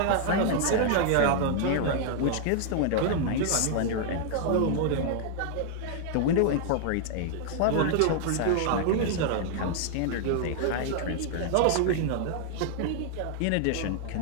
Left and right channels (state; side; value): different; both; correlation -0.01